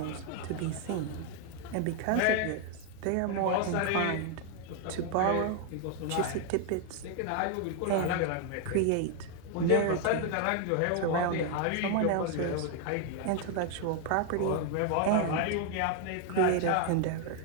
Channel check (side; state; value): both; different; correlation 0.01